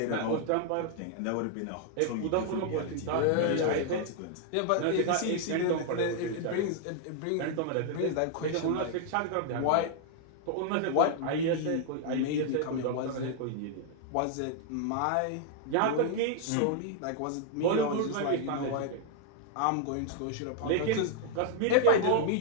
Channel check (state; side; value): different; both; correlation 0.00